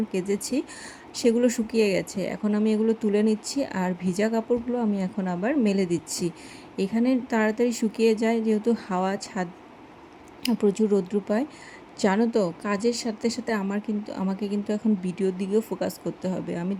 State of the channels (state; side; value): identical; both; correlation 1.00